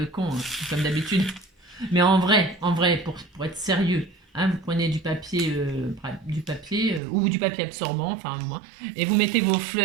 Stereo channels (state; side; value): drops out; left; at 7.0 s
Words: con, hein, comme d'habitude. Mais en vrai, pour être sérieux, hein, vous prenez du papier ou du papier absorbant, enfin moi, et vous mettez vos